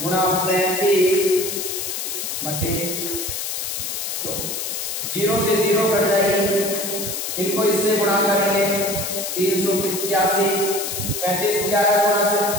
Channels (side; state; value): left; noise; hiss, 4 dB below the sound